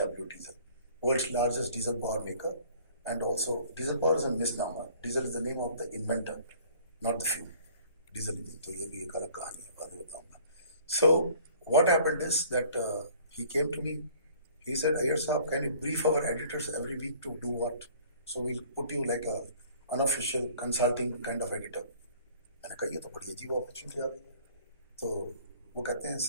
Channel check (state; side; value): inverted; both; correlation -0.53